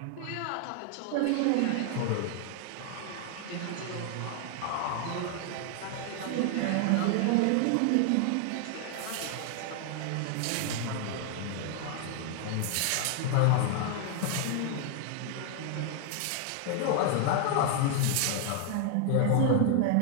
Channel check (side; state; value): both; different; correlation 0.00